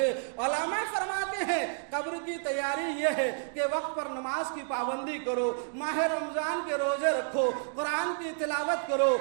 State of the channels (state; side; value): silent; left; digital silence